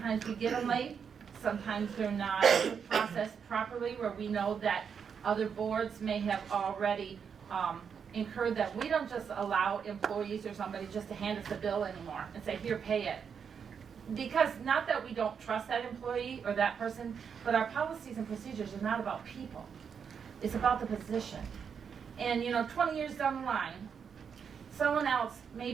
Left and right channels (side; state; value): left; quieter; 6.8 dB